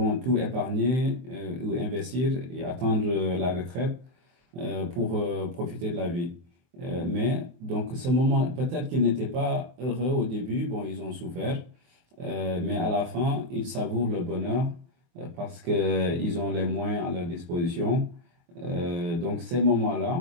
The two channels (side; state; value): left; late; 23 ms